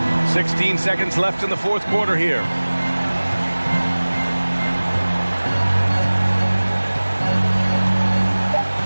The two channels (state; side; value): inverted; both; correlation -1.00